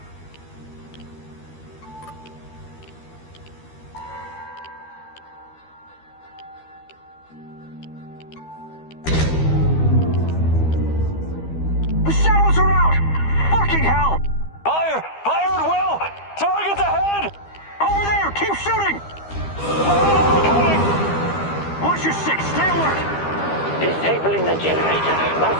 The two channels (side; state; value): right; late; 12 ms